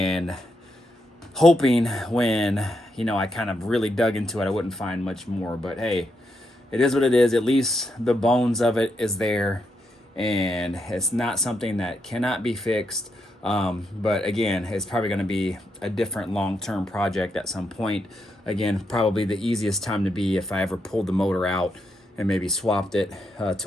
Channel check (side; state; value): both; normal; correlation 0.81